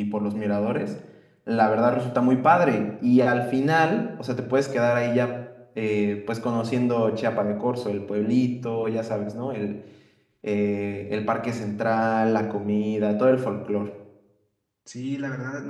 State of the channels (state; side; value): identical; both; correlation 1.00